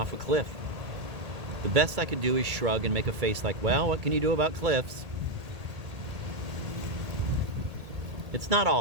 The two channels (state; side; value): late; left; 1.8 ms